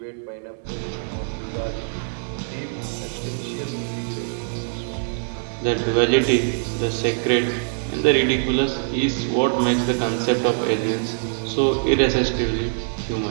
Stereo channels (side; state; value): left; silent; digital silence